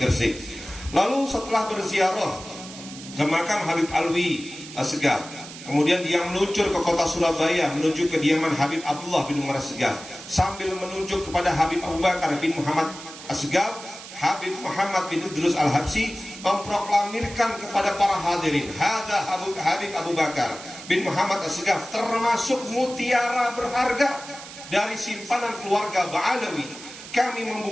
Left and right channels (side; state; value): right; noise; hiss, 14 dB below the sound